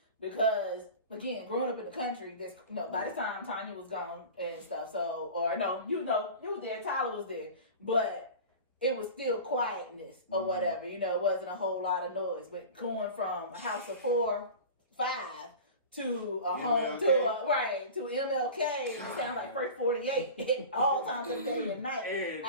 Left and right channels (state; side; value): inverted; both; correlation -0.35